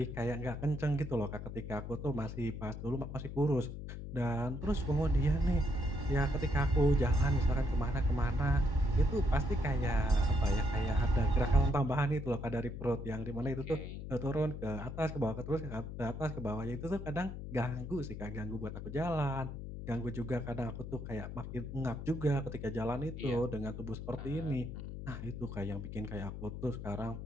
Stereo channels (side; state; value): left; noise; hum, 8 dB below the sound